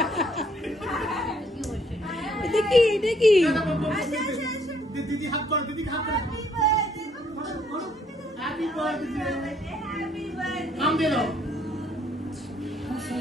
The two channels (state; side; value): normal; both; correlation 0.66